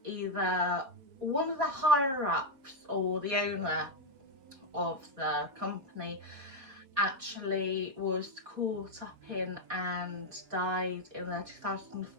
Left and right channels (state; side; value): late; left; 3.9 ms